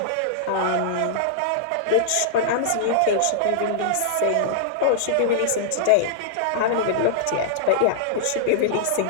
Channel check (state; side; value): different; both; correlation -0.02